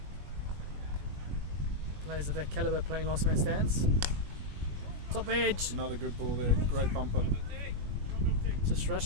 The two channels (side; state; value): left; late; 21 ms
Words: players of that caliber playing Last Man Stands. Top edge. Another good ball there. Great bumper. Just